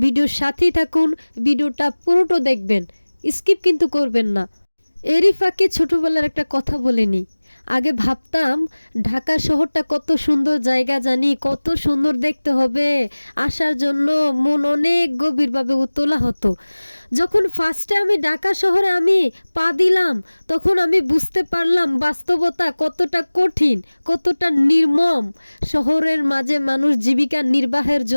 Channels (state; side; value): inverted; both; correlation -1.00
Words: ভিডিওর সাথেই থাকুন, ভিডিওটা পুরোটা দেখবেন, স্কিপ কিন্তু করবেন না। এরই ফাঁকে ছোটবেলার একটা কথা বলে নিই। আগে ভাবতাম ঢাকা শহরটা কত সুন্দর জায়গা, জানি কত সুন্দর দেখতে হবে, আসার জন্য মন অনেক গভীরভাবে উতলা হতো। যখন ফার্স্টে আমি ঢাকা শহরে পা দিলাম, তখন আমি বুঝতে পারলাম বাস্তবতা কতটা কঠিন, কতটা নির্মম। শহরের মাঝে মানুষ জীবিকা নির্বাহের